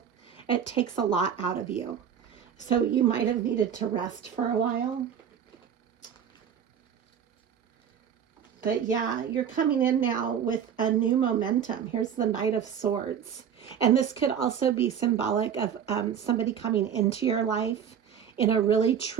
It takes a lot out of you. So you might have needed to rest for a while. But yeah, you're coming in now with a new momentum. Here's the Knight of Swords. And this could also be symbolic of somebody coming into your life in a really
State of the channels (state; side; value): quieter; left; 8.2 dB